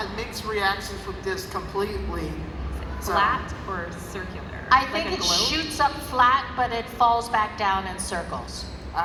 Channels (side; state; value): both; identical; correlation 1.00